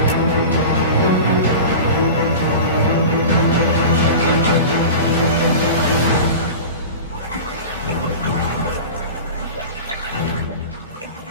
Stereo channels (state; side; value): inverted; both; correlation -0.32